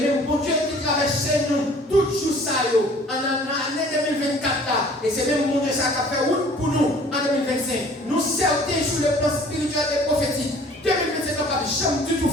bon Dieu qui traverse nous, tout jour ça, en l'année 2024 là, et c'est même bon Dieu ça qui a fait route pour nous en 2025. Nous certains sur le plan spirituel et prophétique. 2025 n'a pas jamais du tout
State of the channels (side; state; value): both; normal; correlation 0.51